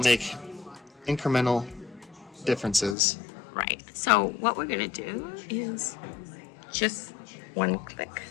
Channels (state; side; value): drops out; right; at 3.0 s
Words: make incremental differences. Right. So what we're going to do is just one click.